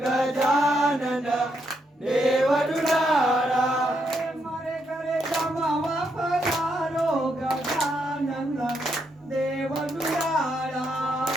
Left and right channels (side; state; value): both; normal; correlation 0.78